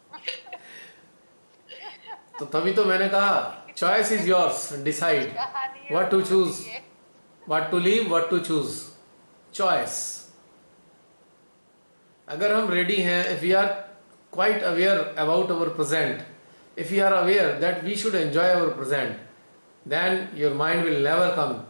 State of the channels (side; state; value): both; inverted; correlation -1.00